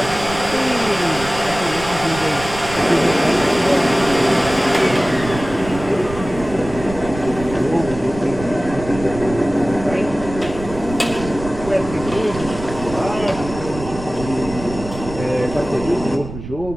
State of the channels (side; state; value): right; noise; rumble, 11 dB below the sound